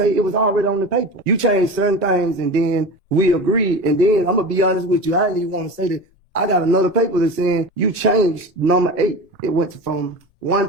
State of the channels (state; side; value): normal; both; correlation 0.30